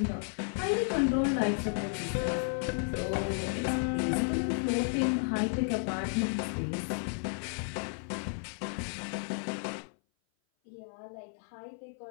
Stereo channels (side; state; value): right; silent; 56 dB below the other